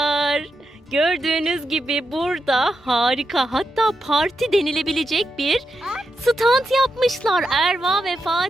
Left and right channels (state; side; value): normal; both; correlation 0.86